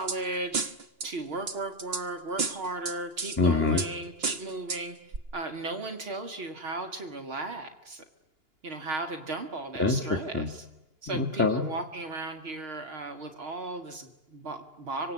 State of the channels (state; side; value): late; left; 2.9 ms